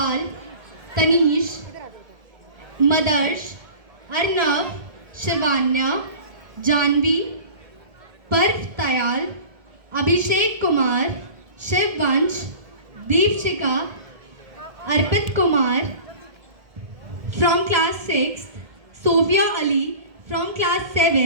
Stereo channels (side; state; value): left; late; 1.7 ms